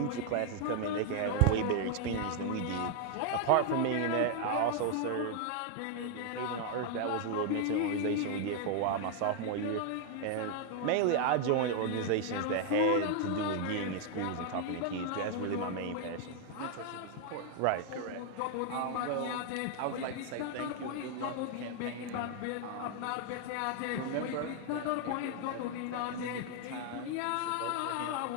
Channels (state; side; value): different; both; correlation 0.00